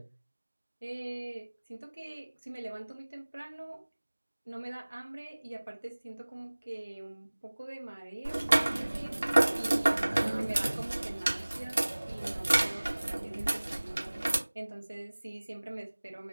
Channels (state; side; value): inverted; both; correlation -1.00